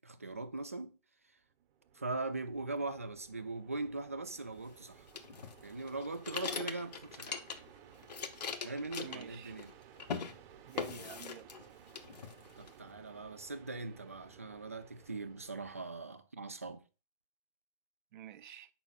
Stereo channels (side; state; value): both; inverted; correlation -0.49